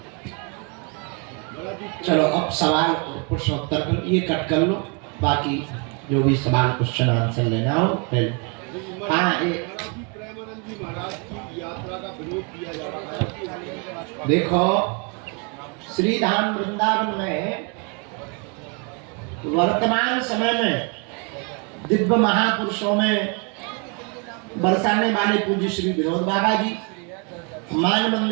चलो अब सवाल प्रश्न उत्तर कर, ये कट कर लो, बाकी जो भी सवाल क्वेश्चन आंसर लेना हो पहले। हाँ, देखो श्री धाम वृंदावन में वर्तमान समय में दिव्य महापुरुषों में बरसाने वाले पूज्य श्री विनोद बाबा जी, मान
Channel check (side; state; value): left; quieter; 34.4 dB